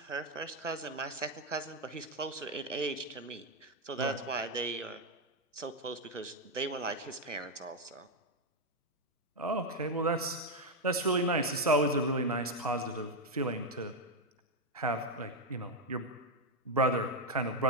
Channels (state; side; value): normal; both; correlation 0.04